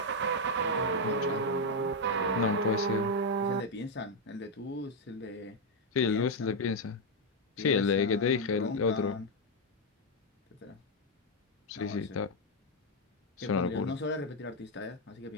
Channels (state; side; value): normal; both; correlation 0.01